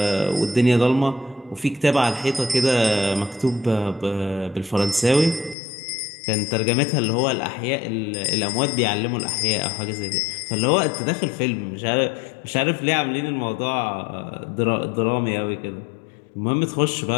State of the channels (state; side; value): drops out; right; at 5.6 s